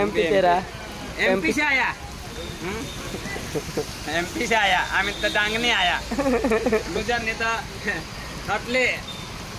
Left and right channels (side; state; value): both; identical; correlation 1.00